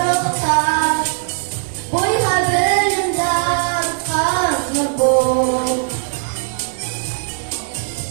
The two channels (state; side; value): silent; left; digital silence